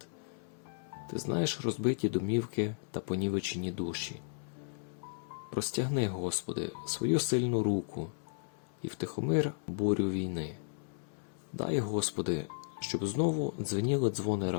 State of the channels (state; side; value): silent; right; 55 dB below the other